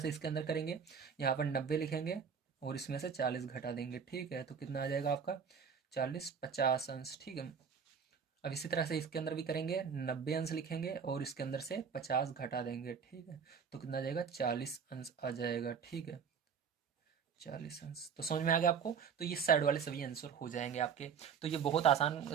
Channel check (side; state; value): left; quieter; 6.6 dB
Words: इसके अंदर करेंगे, यहाँ पर 90 लिखेंगे और इसमें से 40 घटा देंगे, ठीक है, तो कितना आ जाएगा आपका 40, 50 अंश, ठीक है। अब इसी तरह से इसके अंदर भी करेंगे, 90 अंश लिखेंगे और इसके अंदर से 50 घटा देंगे, ठीक है, तो कितना आ जाएगा, 40 अंश आ जाएगा, ठीक है, 40 अंश। तो समझ में आ गया आपको। तो ये साइड वाले सभी आंसर हो जाएंगे आपके। तो ये बहुत आसान